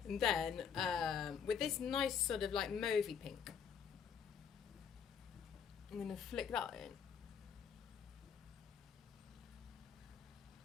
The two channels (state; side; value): quieter; right; 7.2 dB